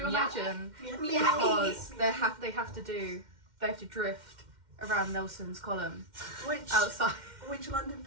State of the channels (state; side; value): late; left; 2.1 ms